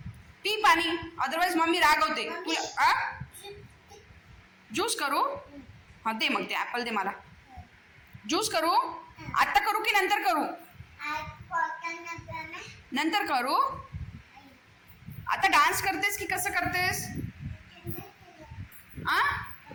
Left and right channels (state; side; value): identical; both; correlation 1.00